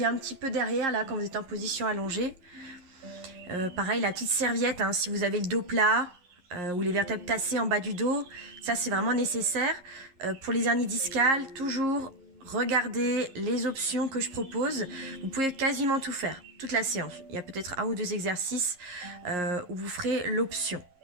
un petit peu derrière, là, quand vous êtes en position allongée. Pareil, la petite serviette, hein, si vous avez le dos plat ou les vertèbres tassées en bas du dos, ça c'est vraiment nécessaire. Pour les hernies discales, toujours regardez les options que je propose. Vous pouvez quasiment tout faire, toute la séance. Il y a peut-être 1 ou 2 exercices où vous ferez l'option.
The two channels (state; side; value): late; left; 11 ms